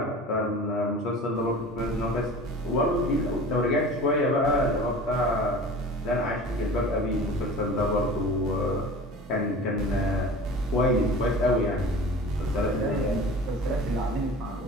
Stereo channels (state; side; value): normal; both; correlation 0.39